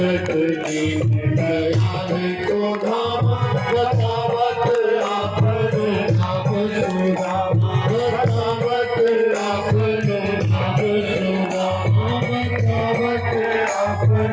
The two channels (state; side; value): identical; both; correlation 1.00